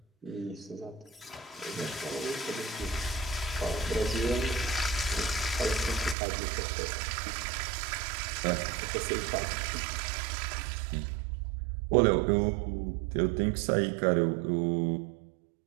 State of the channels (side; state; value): left; drops out; at 6.2 s